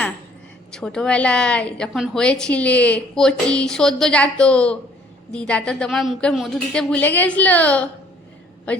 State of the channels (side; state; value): both; normal; correlation 0.58